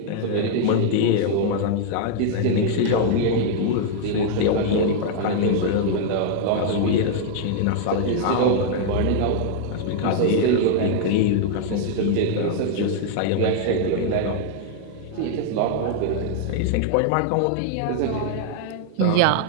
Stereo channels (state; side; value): different; both; correlation 0.00